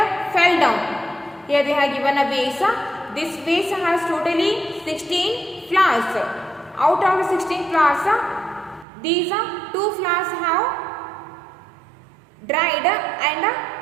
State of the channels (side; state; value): left; drops out; at 8.8 s